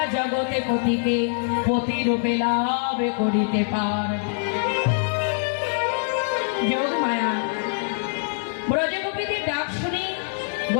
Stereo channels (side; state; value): right; silent; digital silence